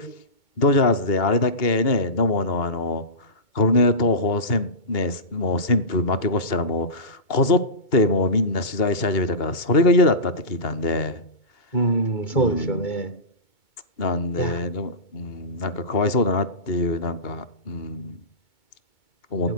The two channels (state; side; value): late; right; 2.2 ms